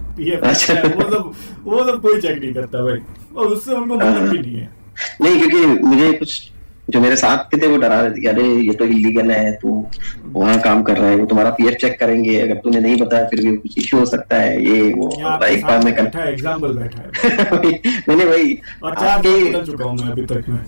PF। अच्छा, वो सब कोई चेक नहीं करता भाई, और उससे उनको मतलब भी नहीं है। नहीं, क्योंकि मुझे कुछ जो मेरे साथ के थे वो डरा रहे थे कि अरे ये तो इलीगल है, तू वहाँ काम कर रहा है, वो तुम्हारा PF चेक करेंगे, अगर तूने नहीं बताया फिर भी कुछ इश्यू हो सकता है, ये वो। एक बार में बैठा है, एग्जाम्पल बैठा है। मैंने वही, और 4 बार बदल चुका हूँ मैं अभी तक में।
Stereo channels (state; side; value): inverted; both; correlation -1.00